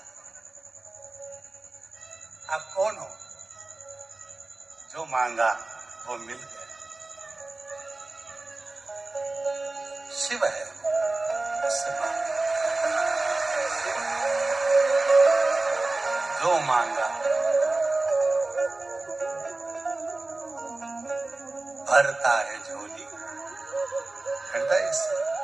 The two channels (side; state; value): left; quieter; 3.1 dB